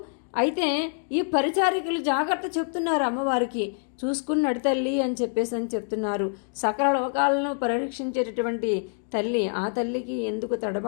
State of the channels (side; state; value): right; silent; 61 dB below the other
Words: అయితే ఈ పరిచారికలు జాగ్రత్త చెప్తున్నారు అమ్మవారికి, చూసుకుని నడితల్లి అని చెప్తున్నారు. సకల లోకాలను పరిరక్షించేటటువంటి తల్లి, ఆ తల్లికి ఎందుకు